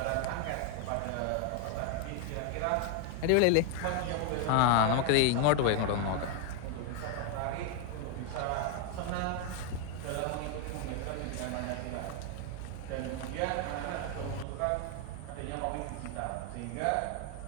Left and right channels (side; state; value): both; different; correlation 0.01